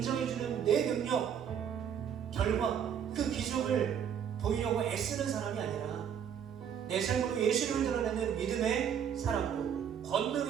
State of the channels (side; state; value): left; quieter; 8.5 dB